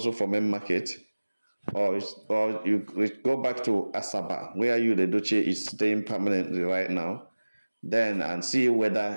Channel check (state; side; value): inverted; both; correlation -1.00